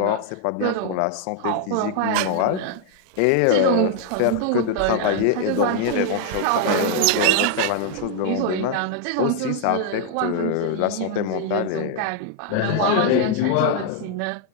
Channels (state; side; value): different; both; correlation 0.00